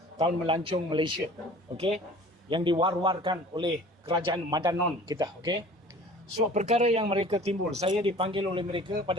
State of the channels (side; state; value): both; normal; correlation 0.46